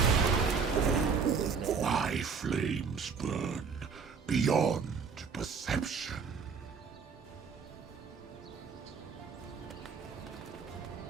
My flames burn beyond perception.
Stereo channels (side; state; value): left; quieter; 5.7 dB